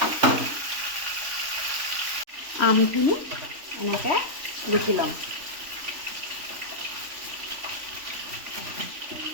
আমখিনি এনেকৈ ৰুকি ল'ম।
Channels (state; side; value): late; left; 3.5 ms